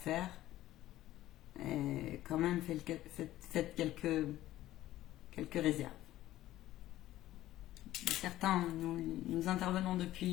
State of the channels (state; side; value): quieter; right; 14.6 dB